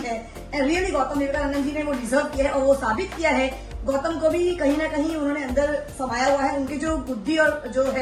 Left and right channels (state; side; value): identical; both; correlation 1.00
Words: एंड रियली गौतम विवेकानंद जी ने वो डिजर्व किया है और वो साबित किया है। गौतम को भी कहीं ना कहीं उन्होंने अंदर समाया हुआ है, उनकी जो बुद्धि और जो